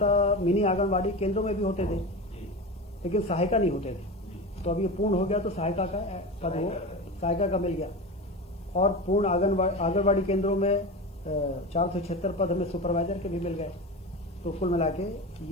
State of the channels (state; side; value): normal; both; correlation 0.26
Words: मिनी आंगनबाड़ी केंद्रों में भी होते थे लेकिन सहायिका नहीं होते थे। तो अब ये पूर्ण हो गया तो सहायिका का पद वो सहायिका का मिल गया और पूर्ण आंगनबाड़ी केंद्रों में 476 पद हमें सुपरवाइजर के भी मिल गए। तो कुल मिला के